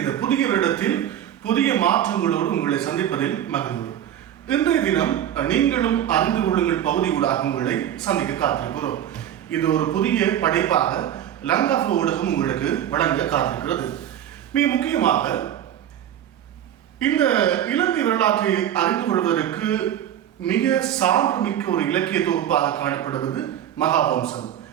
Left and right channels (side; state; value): left; quieter; 10.7 dB